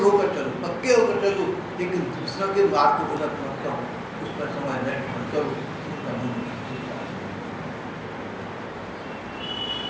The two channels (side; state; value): both; identical; correlation 1.00